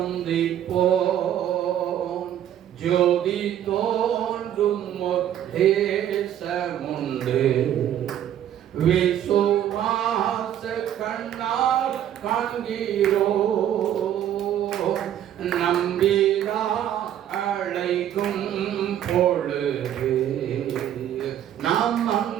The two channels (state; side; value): quieter; left; 10.9 dB